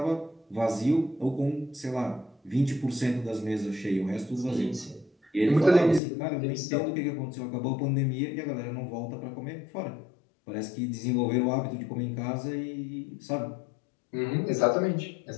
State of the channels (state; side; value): drops out; right; at 6.0 s